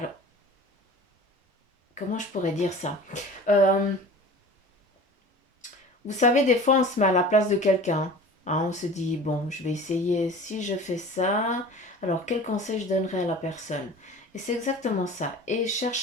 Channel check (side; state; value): both; normal; correlation 0.40